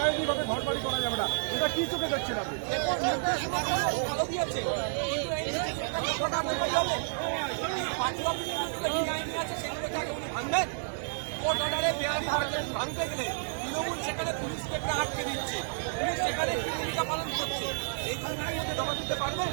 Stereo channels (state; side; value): silent; left; digital silence